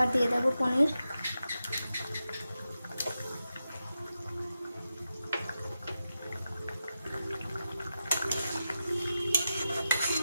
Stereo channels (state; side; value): inverted; both; correlation -0.89